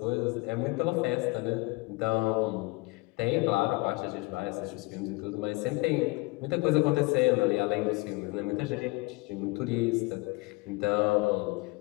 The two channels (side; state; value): right; quieter; 24.7 dB